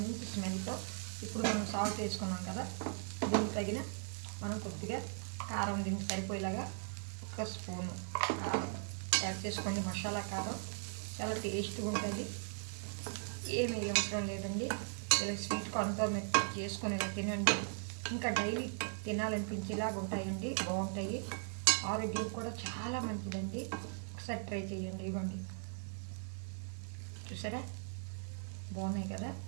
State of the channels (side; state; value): left; silent; 52 dB below the other